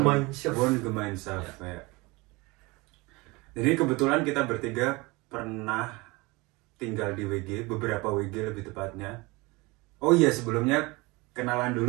Wohngemeinschaft ya. Jadi kebetulan kita bertiga pernah tinggal di WG, beberapa WG lebih tepatnya. Oh iya, sebelumnya kenalan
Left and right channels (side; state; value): left; quieter; 24.3 dB